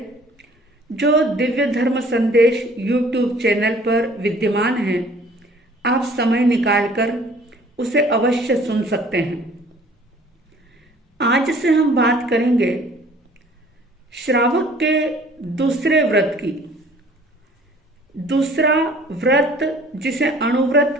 जो दिव्य धर्म संदेश यूट्यूब चैनल पर विद्यमान है। आप समय निकालकर उसे अवश्य सुन सकते हैं। आज से हम बात करेंगे श्रावक के दूसरे व्रत की। दूसरा व्रत जिसे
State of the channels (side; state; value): both; normal; correlation 0.53